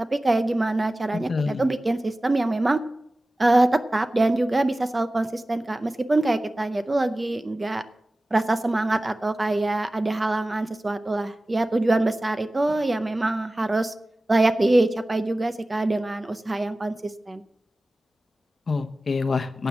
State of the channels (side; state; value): both; normal; correlation 0.96